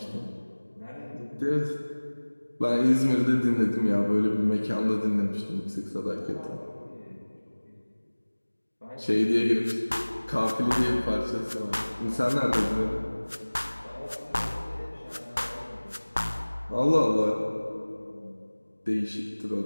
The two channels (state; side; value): inverted; both; correlation -1.00